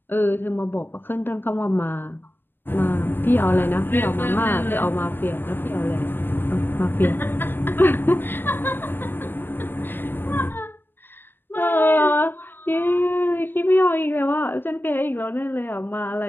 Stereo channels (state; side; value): late; right; 0.094 ms